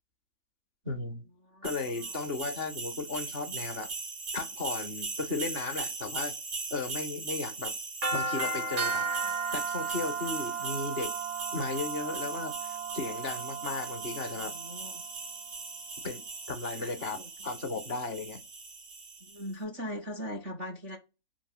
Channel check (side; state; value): left; late; 3.5 ms